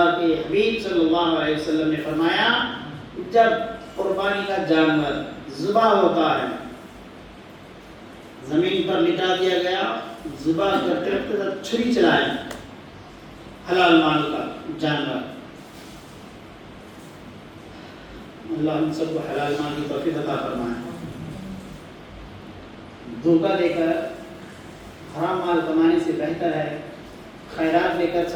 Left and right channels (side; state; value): both; identical; correlation 1.00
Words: کے حبیب صلی اللہ علیہ وسلم نے فرمایا جب قربانی کا جانور ذبح ہوتا ہے، زمین پر لٹا دیا گیا، ذبح کرتے وقت چھری چلائیں، حلال مال کا جانور، اللہ ہم سب کو حلال مال کی توفیق عطا فرمائے۔ دھوکہ دے کر حرام مال کمانے سے بہتر ہے خیرات لے کر،